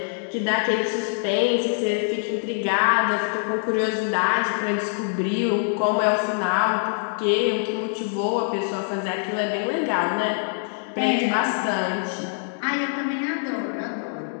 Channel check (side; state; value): right; silent; 62 dB below the other